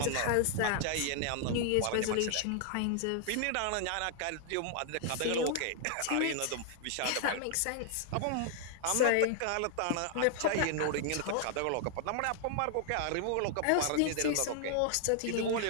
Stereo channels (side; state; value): both; different; correlation 0.00